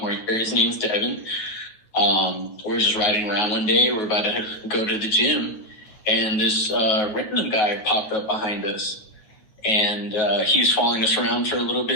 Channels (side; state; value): right; late; 9.0 ms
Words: year, his name's Devin. We're just riding around one day. We're about to go to the gym, and this random guy popped up behind us, and he was following us around for a little